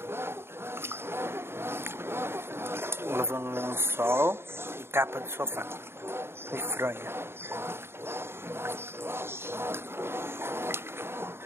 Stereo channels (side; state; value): left; late; 0.12 ms